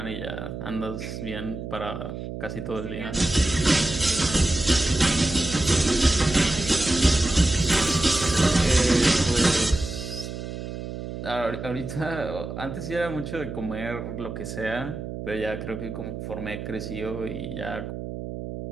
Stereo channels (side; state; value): right; noise; hum, 8 dB below the sound